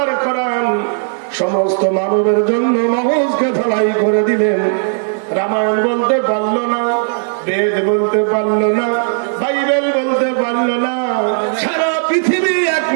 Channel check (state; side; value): silent; left; digital silence